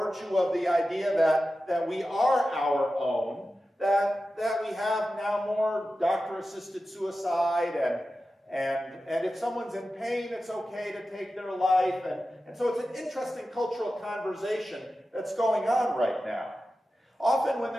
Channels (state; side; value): normal; both; correlation 0.93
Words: of the idea that we are our own, that we have now more doctor-assisted suicide, and if someone's in pain, it's okay to take their life, and so it's an interesting cultural conversation that's going on right now. Often when